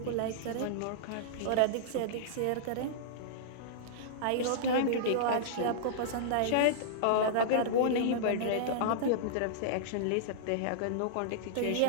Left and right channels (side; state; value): both; different; correlation -0.02